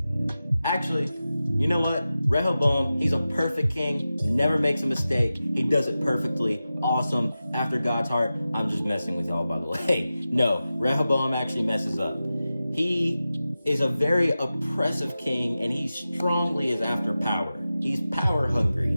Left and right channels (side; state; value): both; inverted; correlation -0.94